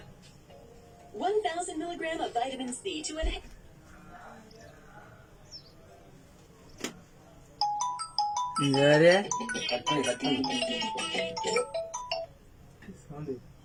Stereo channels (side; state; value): both; identical; correlation 1.00